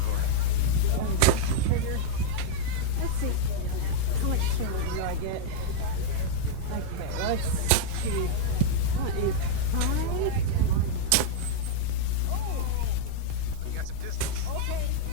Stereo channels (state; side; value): different; both; correlation -0.01